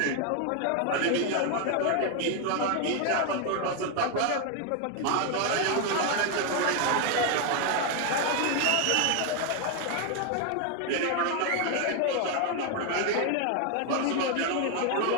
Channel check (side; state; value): both; different; correlation 0.01